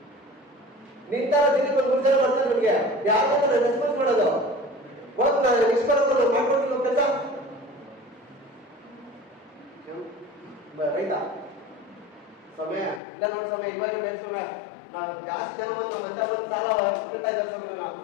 ನಿಂತಾರ ದಿನಕ್ಕೆ ಒಂದು 3 ಜನ ಬರ್ತಾರೆ ನಿಮ್ಗೆ, ಯಾರು ರೆಸ್ಪಾನ್ಸ್ ಮಾಡೋದು? ಹೋಗ್ ನಾನು ನಿಷ್ಕರ್ಮ ಮಾಡ್ಕೊಡ್ತೀನಿ ಕೆಲಸ. ರೈತ ಸಮಯ ಇಲ್ಲ ನೋಡಿ ಸಮಯ, ಇವಾಗ ಬೇಕು ಸಮಯ. ನಾವು ಜಾಸ್ತಿ ಜನ ಬಂದು ಸಾಲ ಇಡ್ತಾ ಇದ್ದಾರೆ ಸಮಯ.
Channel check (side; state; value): right; drops out; at 13.0 s